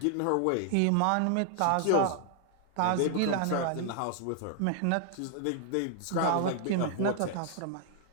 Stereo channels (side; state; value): both; different; correlation 0.00